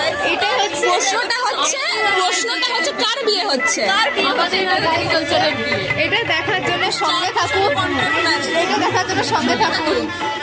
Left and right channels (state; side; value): identical; both; correlation 1.00